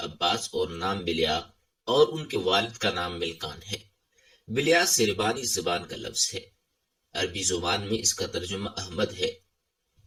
اور نام بلیا، اور ان کے والد کا نام ملکان ہے۔ بلیا سربانی زبان کا لفظ ہے، عربی زبان میں اس کا ترجمہ احمد ہے۔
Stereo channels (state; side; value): identical; both; correlation 1.00